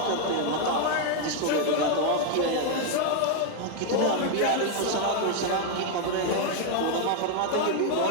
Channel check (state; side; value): different; both; correlation 0.00